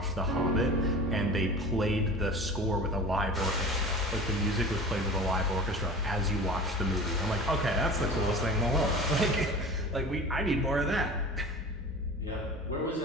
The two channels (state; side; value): normal; both; correlation 0.37